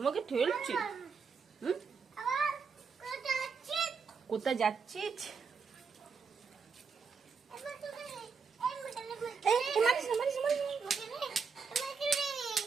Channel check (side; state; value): left; quieter; 5.5 dB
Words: ঠেলছি। হুম কোথায় যাচ্ছিস?